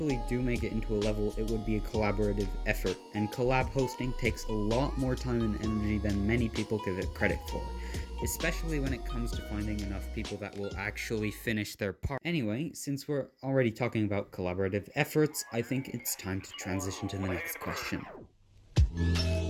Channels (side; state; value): both; identical; correlation 1.00